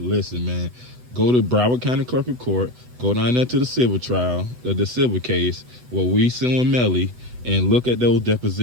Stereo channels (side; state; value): left; late; 8.1 ms